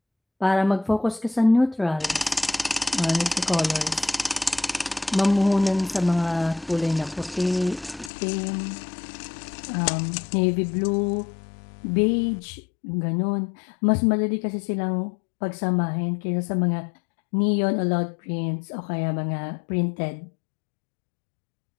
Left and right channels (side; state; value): right; drops out; at 8.1 s